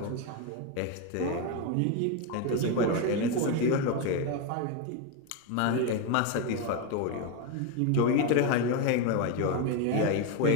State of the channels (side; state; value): both; different; correlation 0.02